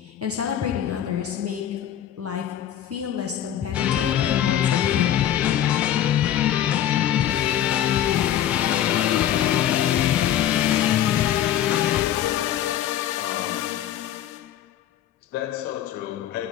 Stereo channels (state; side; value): quieter; right; 11.2 dB